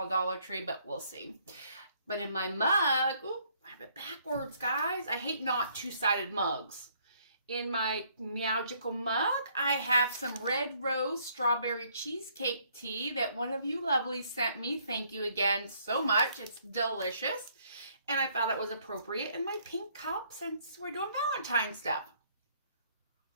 Dollar Tree, but we'll see. But in my mug, ooh, I have it backwards, guys. I hate not two-sided mugs. In my Meowgical mug, I have some Red Rose Strawberry Cheesecake Tea that one of you lovelies sent me. Thank you again so much. It's delicious. And I thought it was appropriate in my pink cup since we're doing Valentine stuff.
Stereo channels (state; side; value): inverted; both; correlation -0.66